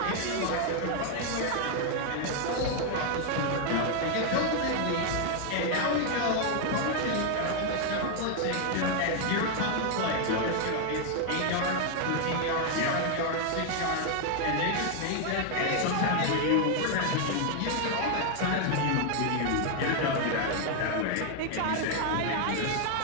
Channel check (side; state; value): both; different; correlation 0.00